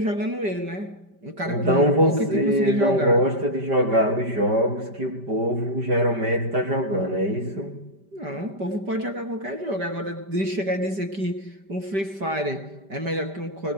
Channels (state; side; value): late; left; 5.1 ms